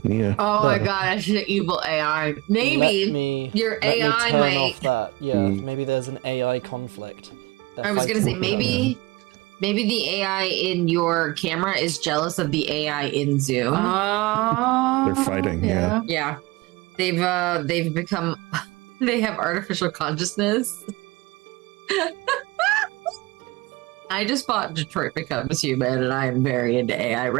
Yeah. Oh my But- gosh, the evil AI. Maybe Let me, your let me AI turn might. off that. Yeah, Mm. maybe there's an AI conflict. They're I was gonna say fighting with each maybe the AI in your camera is jealous of the AI in Zoom. They're fighting, yeah. Yeah, they've become they have artificial consciousness. I just bought Detroit Becomes Human, and I am very into AI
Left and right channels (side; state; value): left; quieter; 22.0 dB